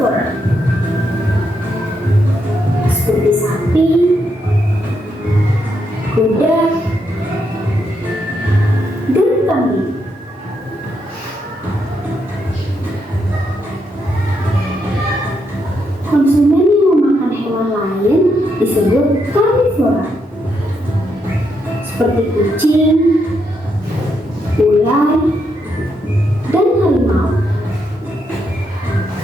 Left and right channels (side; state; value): both; normal; correlation 0.79